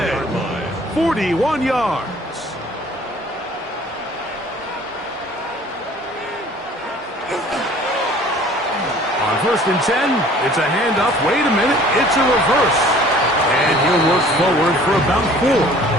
41 yards. On 1st and 10, it's a handoff. Wait a minute. It's a reverse. And he'll work forward for about 4.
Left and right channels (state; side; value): normal; both; correlation 0.51